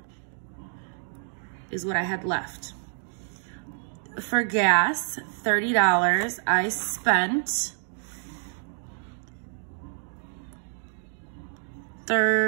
is what I had left. For gas, $30, I spent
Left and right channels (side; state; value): left; silent; digital silence